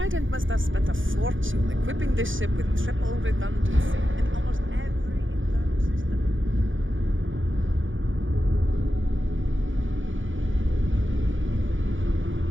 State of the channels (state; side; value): late; left; 0.57 ms